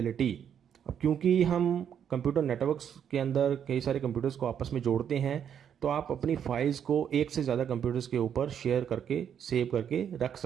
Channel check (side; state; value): left; quieter; 8.6 dB